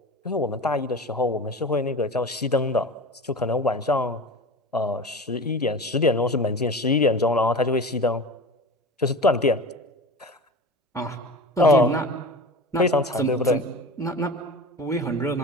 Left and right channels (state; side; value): normal; both; correlation 0.32